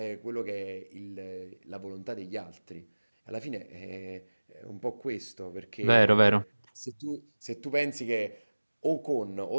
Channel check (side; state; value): both; inverted; correlation -1.00